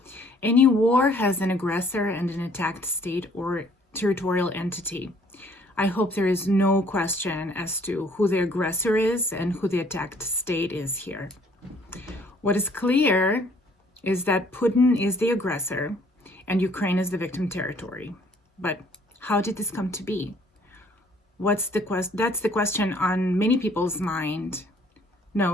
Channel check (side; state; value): both; normal; correlation 0.59